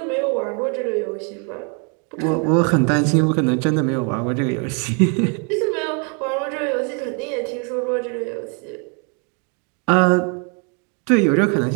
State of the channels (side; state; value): left; quieter; 37.0 dB